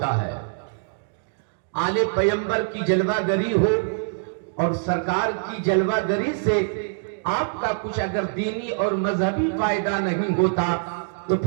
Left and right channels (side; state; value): left; silent; digital silence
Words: ہے. آل پیمبر کی جلوہ گری ہو اور سرکار کی جلوہ گری سے آپ کا کچھ اگر دینی اور مذہبی فائدہ نہیں ہوتا تو